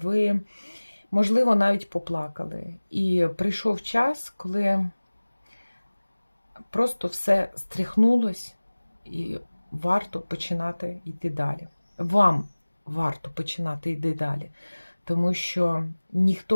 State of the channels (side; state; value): both; inverted; correlation -1.00